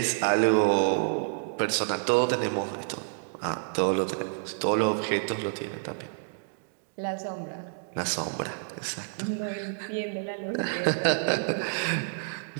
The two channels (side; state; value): left; silent; digital silence